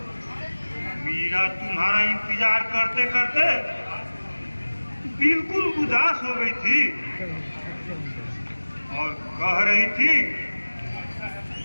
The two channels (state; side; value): inverted; both; correlation -1.00